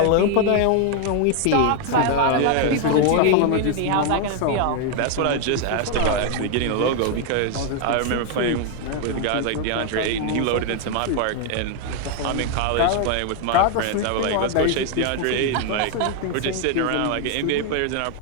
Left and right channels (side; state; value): both; different; correlation 0.00